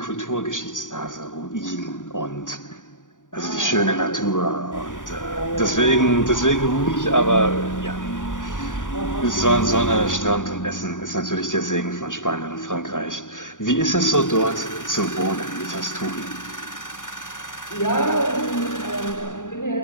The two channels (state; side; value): late; right; 0.87 ms